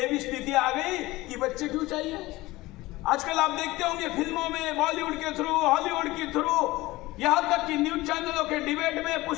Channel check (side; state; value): right; quieter; 19.3 dB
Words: भी स्थिति आ गई कि बच्चे क्यों चाहिए। आजकल आप देखते होंगे फिल्मों में, बॉलीवुड के थ्रू, हॉलीवुड के थ्रू, यहां तक कि न्यूज चैनलों के डिबेट में,